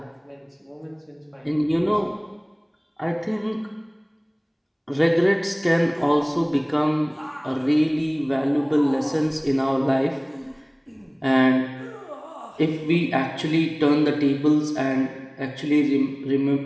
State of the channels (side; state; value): both; identical; correlation 1.00